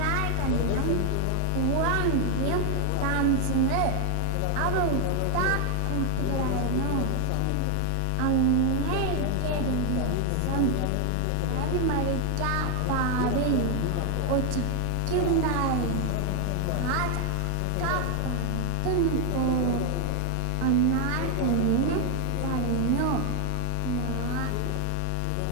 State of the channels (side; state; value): both; different; correlation 0.00